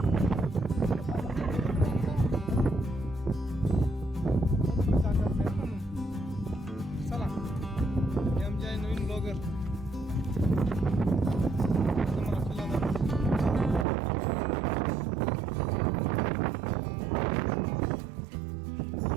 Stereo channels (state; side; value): drops out; left; at 13.9 s